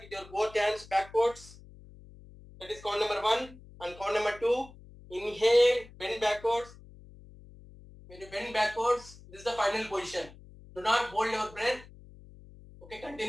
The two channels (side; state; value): left; noise; hum, 20 dB below the sound